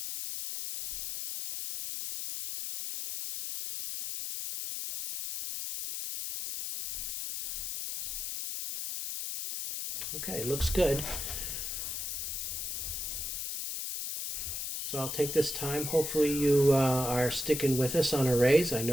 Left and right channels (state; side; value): noise; left; hiss, 4 dB below the sound